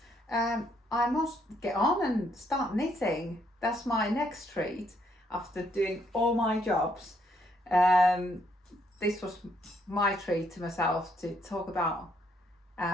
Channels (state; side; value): normal; both; correlation 0.71